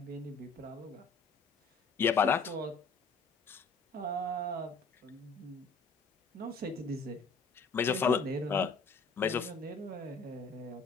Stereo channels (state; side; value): quieter; right; 4.2 dB